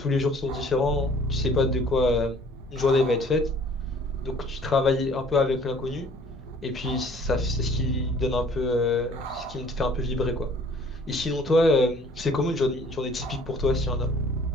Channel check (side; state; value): both; normal; correlation 0.54